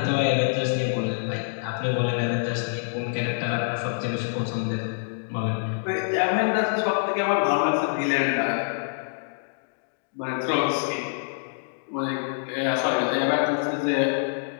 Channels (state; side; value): silent; right; digital silence